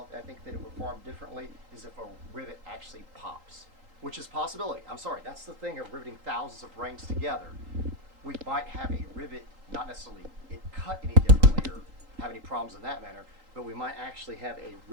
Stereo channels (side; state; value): left; late; 3.8 ms